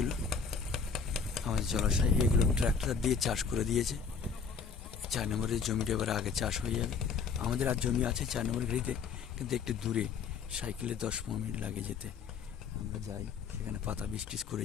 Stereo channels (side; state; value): right; quieter; 5.8 dB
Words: আমাদের জলাশয়, এইগুলো ট্রাক্টর দিয়ে চাষ করে দিয়েছে। 4 নম্বরের জমিটা এবার আগে চাষ হয়ে যাবে। আমাদের আর জমি আছে 4 নম্বর ঘড়িতে, কিন্তু একটু দূরে, সাইকেলে 10-15 মিনিট লাগে যেতে। আমরা যাই সেখানে, পাতা বীজ টিজ